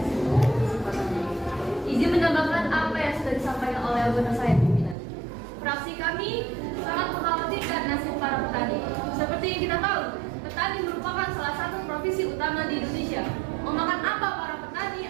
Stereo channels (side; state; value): left; drops out; at 5.0 s